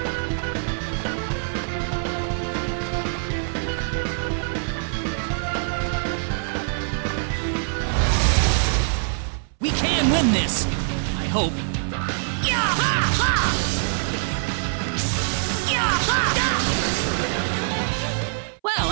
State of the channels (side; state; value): left; silent; 63 dB below the other